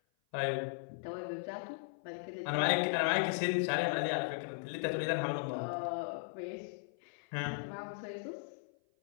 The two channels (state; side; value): silent; right; 53 dB below the other